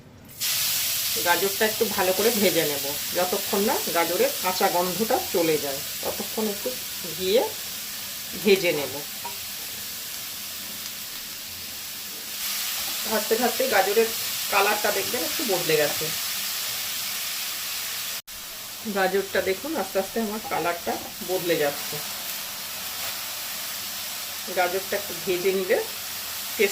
গাজরটা একটু ভালো করে ভেজে নেব, যতক্ষণ না গাজরের কাঁচা গন্ধটা চলে যায় ততক্ষণ একটু ঘিয়ে ভেজে নেব। ভাজতে ভাজতে গাজরের কালারটা দেখবেন একটু বদলে গেছে। গাজরটা দেখুন আস্তে আস্তে আমার কালারটা বদলে যাচ্ছে। গাজরটা একটু ভেজে নিলে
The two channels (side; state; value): both; identical; correlation 1.00